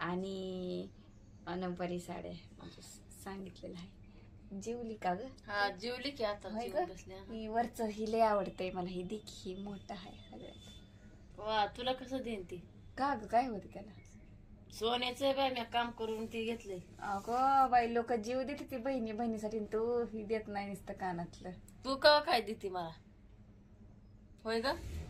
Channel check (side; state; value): both; identical; correlation 1.00